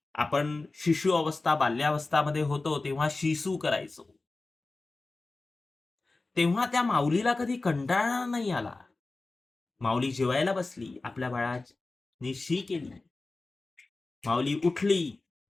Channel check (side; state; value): right; quieter; 3.4 dB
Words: आपण शिशु अवस्था, बाल्यावस्थामध्ये होतो, तेव्हा शिसू करायचो. तेव्हा त्या माऊलीला कधी कंटाळा नाही आला. माऊली जेवायला बसली, आपल्या बाळाने शी केली. माऊली उठली